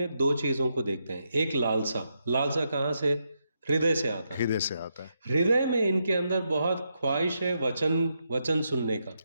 दो चीजों को देखते हैं। एक लालसा कहाँ से? हृदय से आता है। हृदय में इनके अंदर बहुत ख्वाहिश है वचन सुनने का,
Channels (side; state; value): both; inverted; correlation -0.82